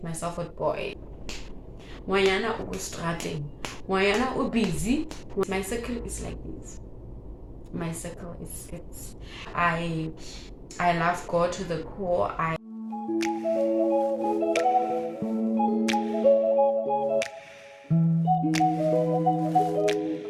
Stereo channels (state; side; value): identical; both; correlation 1.00